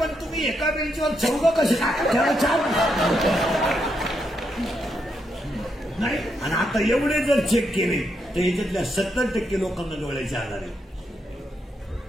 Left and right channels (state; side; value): normal; both; correlation 0.80